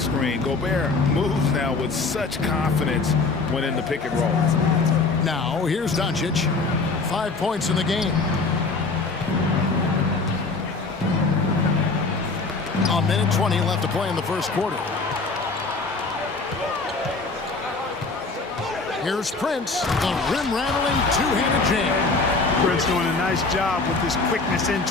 Gobert moves now with such confidence when in the pick and roll. Now, here's Doncic. 5 points in the game. A minute 20 left to play in the first quarter. Here's Prince, the rim-rattling two-handed jam. Prince doing a nice job with his quickness in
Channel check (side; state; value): right; quieter; 3.9 dB